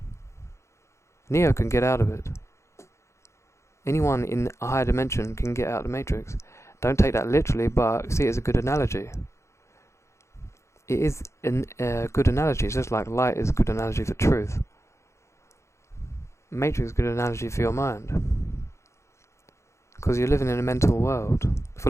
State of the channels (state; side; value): late; right; 0.14 ms